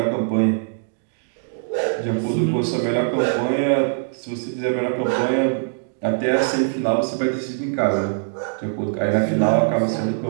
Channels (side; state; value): left; silent; digital silence